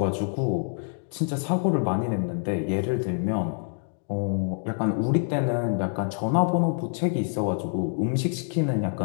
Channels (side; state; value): right; silent; digital silence